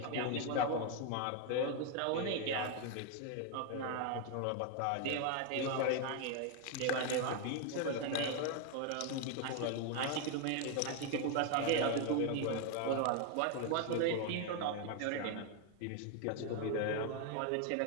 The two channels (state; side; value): different; both; correlation 0.01